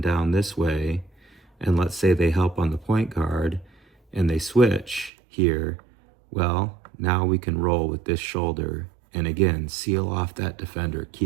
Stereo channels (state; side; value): drops out; left; at 5.1 s